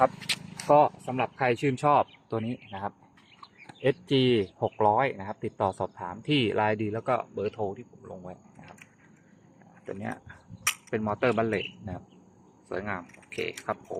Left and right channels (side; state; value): both; identical; correlation 1.00